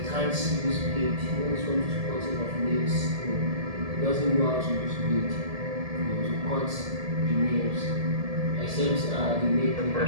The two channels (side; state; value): left; late; 1.7 ms